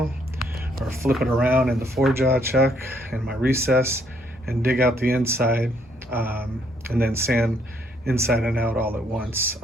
or flip it around in the 4-jaw chuck in my recess and dig out the inside, and then sand inside and out all at once,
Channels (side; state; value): both; normal; correlation 0.69